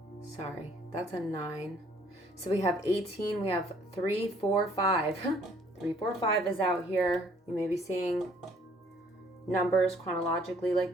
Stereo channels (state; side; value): normal; both; correlation 0.61